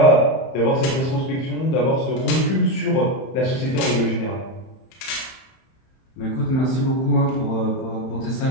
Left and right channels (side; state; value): right; late; 31 ms